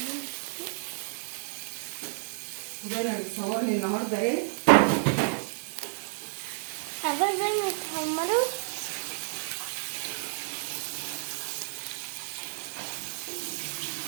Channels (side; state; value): left; silent; digital silence